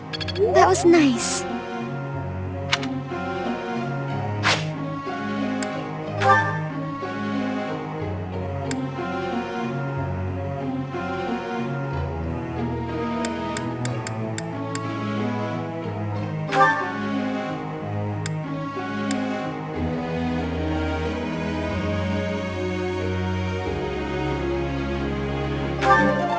That was nice.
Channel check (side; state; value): both; identical; correlation 1.00